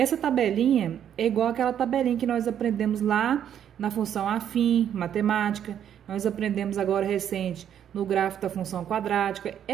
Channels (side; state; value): left; quieter; 9.5 dB